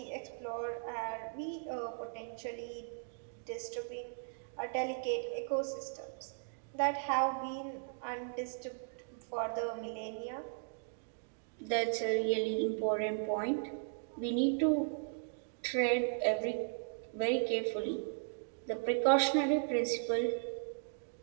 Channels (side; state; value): left; silent; digital silence